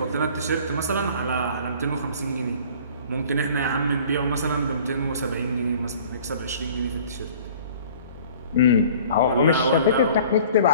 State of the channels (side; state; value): both; inverted; correlation -0.49